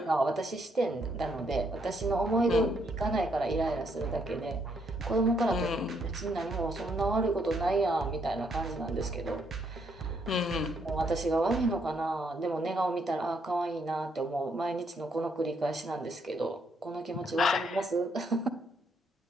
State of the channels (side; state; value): both; normal; correlation 0.73